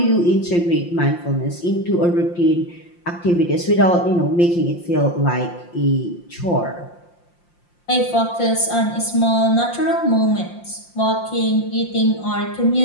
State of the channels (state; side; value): late; right; 5.7 ms